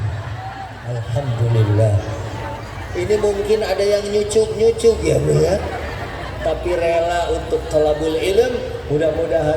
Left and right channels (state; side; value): identical; both; correlation 1.00